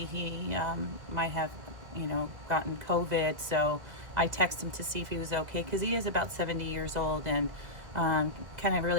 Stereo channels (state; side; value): late; left; 2.2 ms